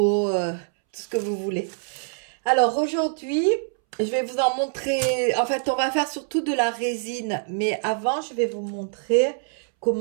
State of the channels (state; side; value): silent; left; 62 dB below the other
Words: tout ce que vous voulez. Alors aujourd'hui, je vais vous en montrer, en fait on va faire surtout de la résine, mais avant je vais vous montrer